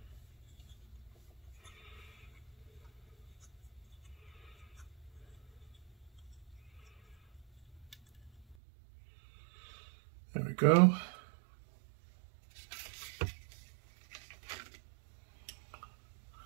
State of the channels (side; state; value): left; drops out; at 8.6 s